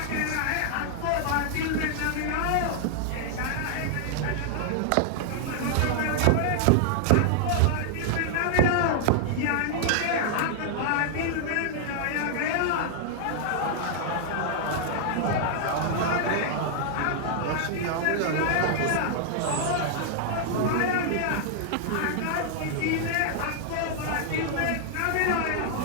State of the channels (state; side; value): different; both; correlation -0.01